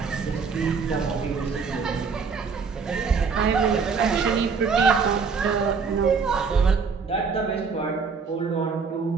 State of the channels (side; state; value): left; quieter; 5.3 dB